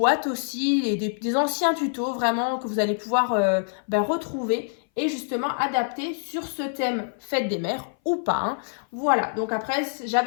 aussi, et des anciens tutos vraiment que vous allez pouvoir retrouver et justement adapter sur ce thème fête des mères ou pas. Hein. Voilà, donc après,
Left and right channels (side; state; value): right; silent; 58 dB below the other